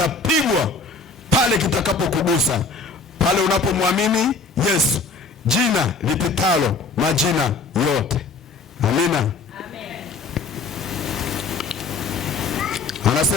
pale kitakapokugusa, pale unapomwamini Yesu, jina lipitalo majina yote. Amina. Amen.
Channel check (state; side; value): quieter; right; 4.0 dB